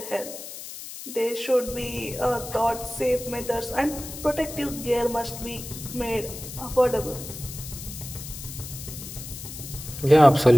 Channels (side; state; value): left; noise; hiss, 11 dB below the sound